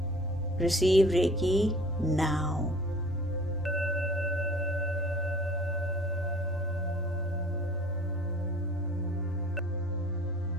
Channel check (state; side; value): normal; both; correlation 0.49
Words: Receive Reiki now.